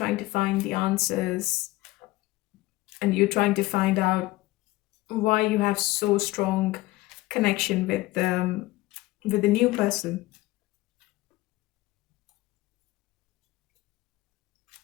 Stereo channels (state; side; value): quieter; right; 19.0 dB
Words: to find the answers, and you're trying to find out why you have so strong connection with the new person.